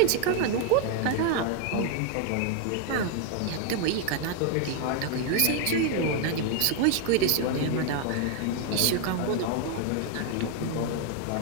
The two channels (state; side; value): different; both; correlation 0.01